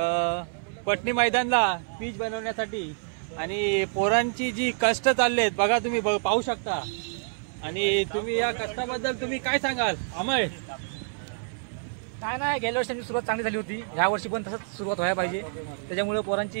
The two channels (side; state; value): left; silent; 59 dB below the other